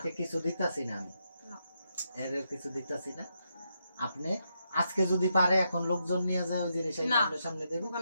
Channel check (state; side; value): inverted; both; correlation -0.82